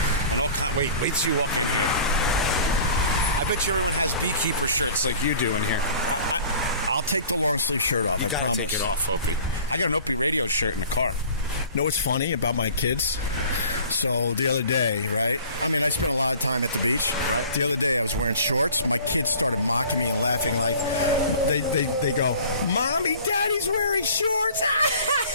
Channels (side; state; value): both; inverted; correlation -0.46